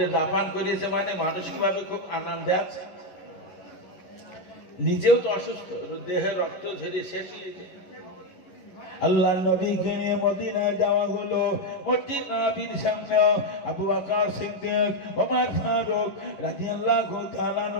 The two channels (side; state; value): right; late; 11 ms